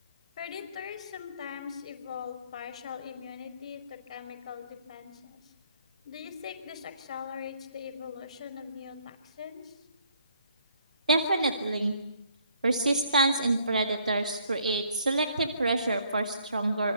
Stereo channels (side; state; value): both; inverted; correlation -0.65